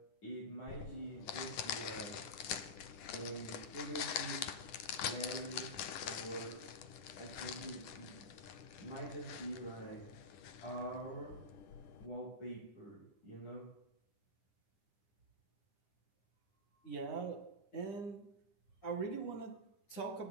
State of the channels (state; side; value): late; right; 10 ms